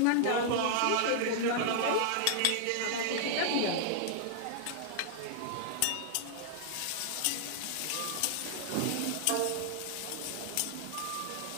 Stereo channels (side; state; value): both; different; correlation -0.01